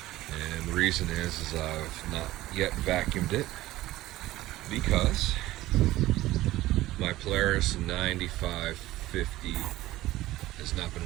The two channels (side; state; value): left; quieter; 16.4 dB